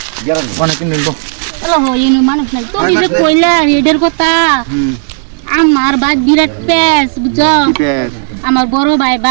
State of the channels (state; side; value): silent; left; 62 dB below the other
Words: অনেক নিব হ্যালো হইনি মানুষ না তুমি যে কইলা রিডার কথা আমার বাদ বিরাট পেস বুঝছো আমার বড় ভাই